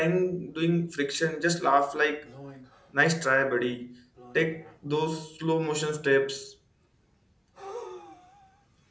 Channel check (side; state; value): both; identical; correlation 1.00